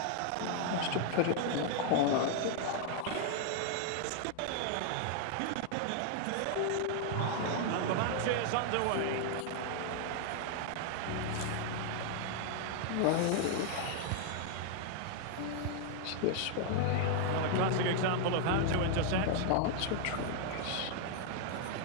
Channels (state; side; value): different; both; correlation 0.00